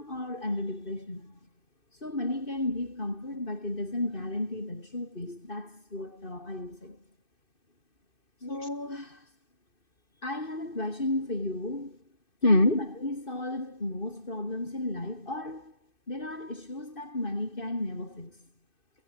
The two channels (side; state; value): right; late; 2.6 ms